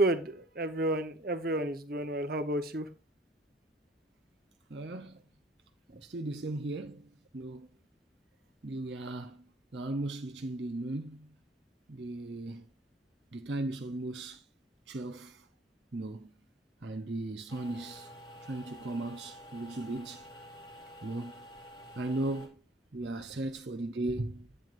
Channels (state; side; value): normal; both; correlation 0.54